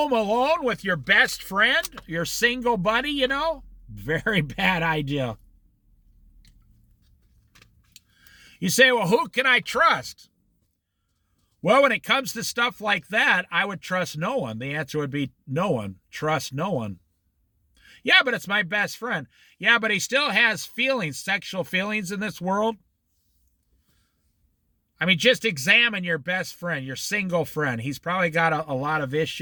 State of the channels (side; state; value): both; identical; correlation 1.00